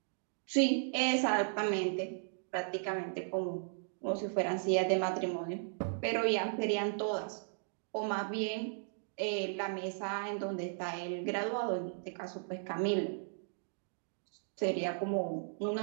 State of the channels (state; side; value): silent; left; digital silence